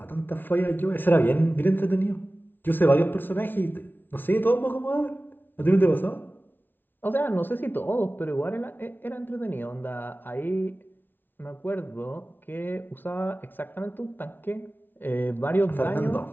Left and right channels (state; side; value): late; right; 0.094 ms